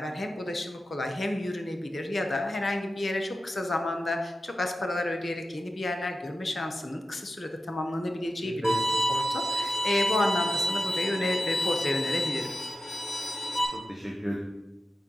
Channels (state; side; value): normal; both; correlation 0.92